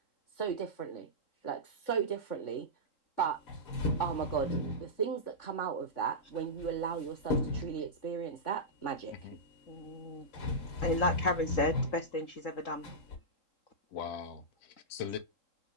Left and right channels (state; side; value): late; right; 3.8 ms